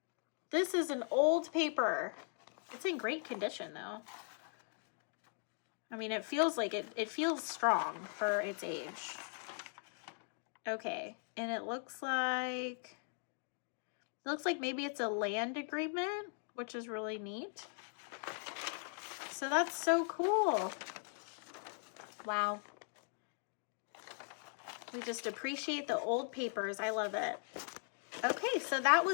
This is an old paper. It's in great condition though. I mean, it feels like it feels strong for its age. Okay, and it looks like maybe it's a land agreement, which is really neat. So that's so cool. Wow. We just appreciate the old papers. I love it. Okay, so that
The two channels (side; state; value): right; silent; 51 dB below the other